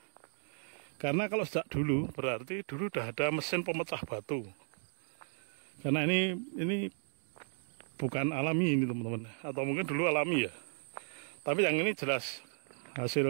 Karena kalau sejak dulu berarti dulu udah ada mesin pemecah batu. Karena ini bukan alami ini teman-teman, atau mungkin dulu alami ya. Tapi yang ini jelas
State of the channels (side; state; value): left; silent; digital silence